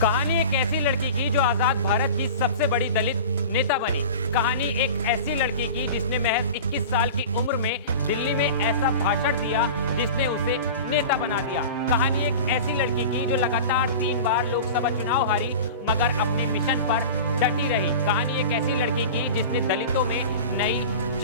कहानी एक ऐसी लड़की की जो आजाद भारत की सबसे बड़ी दलित नेता बनी। कहानी एक ऐसी लड़की की जिसने महज 21 साल की उम्र में दिल्ली में ऐसा भाषण दिया जिसने उसे नेता बना दिया। कहानी एक ऐसी लड़की की जो लगातार 3 बार लोकसभा चुनाव हारी मगर अपने मिशन पर डटी रही। कहानी एक ऐसी लड़की की जिसने दलितों में नई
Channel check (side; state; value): both; inverted; correlation -0.34